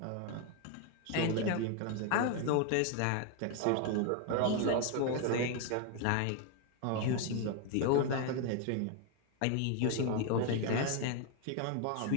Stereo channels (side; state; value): both; different; correlation 0.01